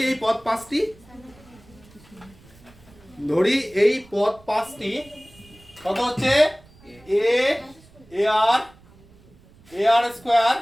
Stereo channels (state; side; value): noise; right; rumble, 26 dB below the sound